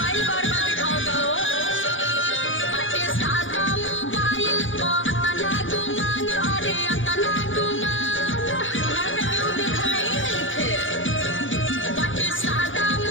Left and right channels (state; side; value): late; right; 0.57 ms